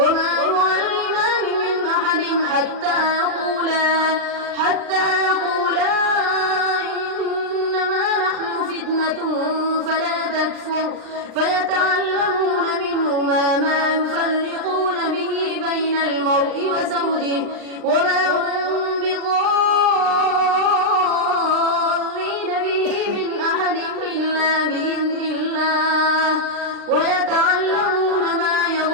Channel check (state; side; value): late; left; 39 ms